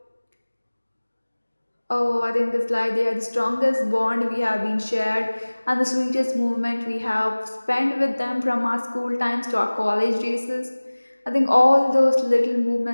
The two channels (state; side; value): inverted; both; correlation -1.00